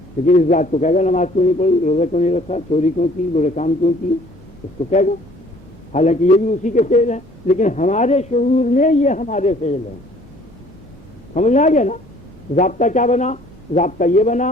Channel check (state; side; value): normal; both; correlation 0.56